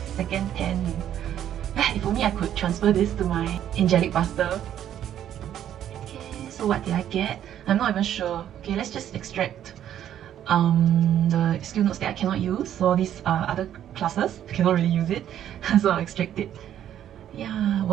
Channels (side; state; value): left; quieter; 10.7 dB